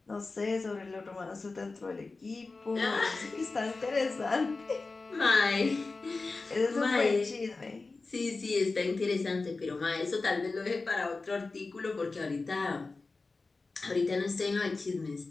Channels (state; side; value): quieter; right; 3.8 dB